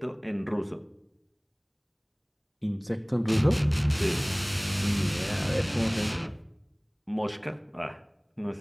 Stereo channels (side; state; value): both; identical; correlation 1.00